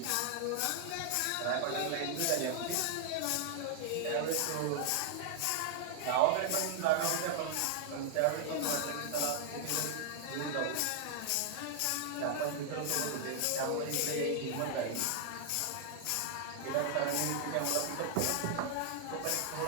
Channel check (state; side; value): different; both; correlation 0.00